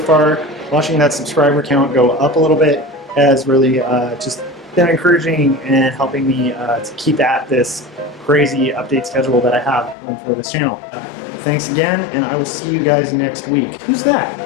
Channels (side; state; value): right; drops out; at 10.0 s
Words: Watching that subscriber count go up a little bit has really just been encouraging and helping me to keep at this crazy update schedule that I have for this channel. Thanks again, and I will see you guys next week. Who's that?